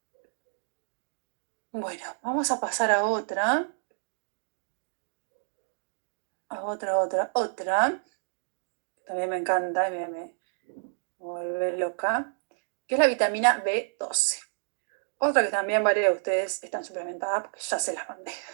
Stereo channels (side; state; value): left; silent; digital silence